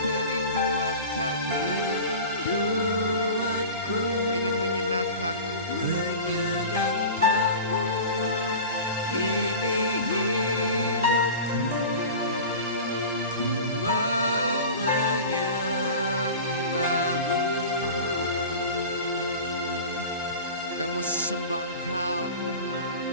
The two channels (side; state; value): both; inverted; correlation -0.34